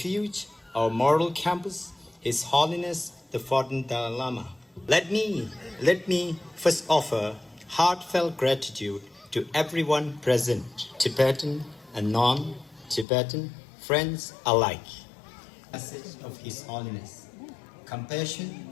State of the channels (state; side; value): drops out; right; at 13.1 s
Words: our moral campus, His Holiness the 14th Dalai Lama. Let me first offer heartfelt gratitude to everyone present, Tibetan and non-Tibetan friends alike. Message of His Holiness: compassion,